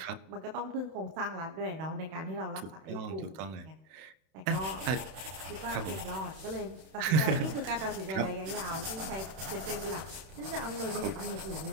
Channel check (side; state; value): left; late; 31 ms